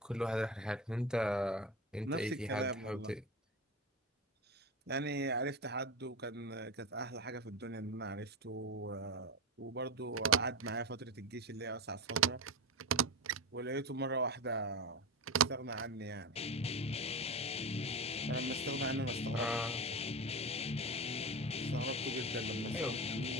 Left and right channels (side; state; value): both; normal; correlation 0.21